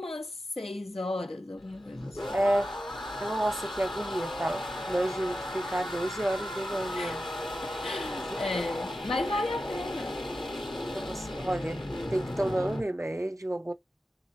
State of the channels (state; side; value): normal; both; correlation 0.91